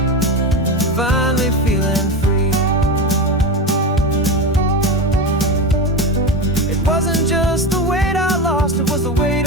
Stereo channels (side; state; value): both; normal; correlation 0.20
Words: finally feeling free. It wasn't just the weight I lost, it was the weight